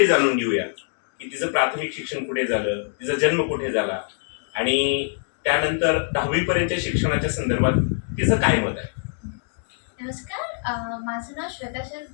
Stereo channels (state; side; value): silent; right; digital silence